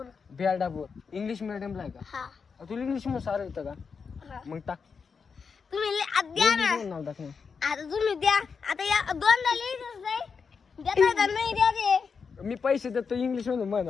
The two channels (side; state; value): right; quieter; 5.6 dB